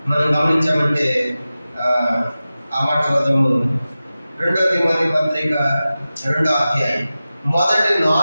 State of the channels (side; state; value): both; inverted; correlation -0.95